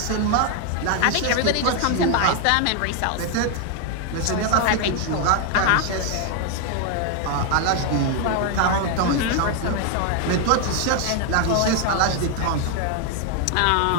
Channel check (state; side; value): different; both; correlation 0.01